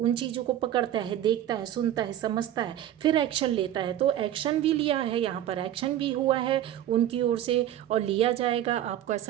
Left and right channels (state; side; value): quieter; left; 11.7 dB